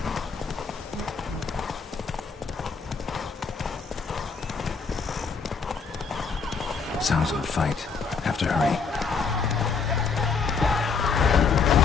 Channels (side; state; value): right; quieter; 5.2 dB